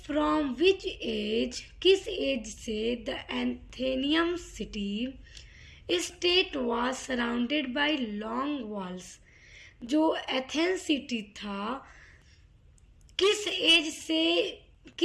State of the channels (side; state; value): both; identical; correlation 1.00